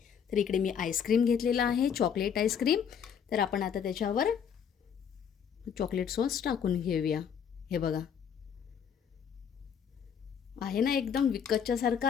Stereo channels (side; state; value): right; quieter; 7.7 dB